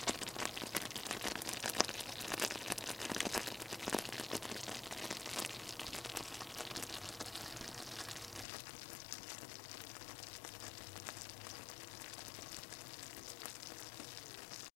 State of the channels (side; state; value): right; drops out; at 8.5 s